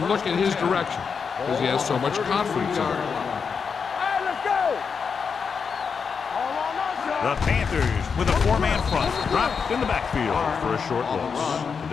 look in his direction because he has so much confidence in him. Hey, let's go. The Panthers with a 4-man front, dropped in the backfield for a short loss.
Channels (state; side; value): quieter; right; 5.9 dB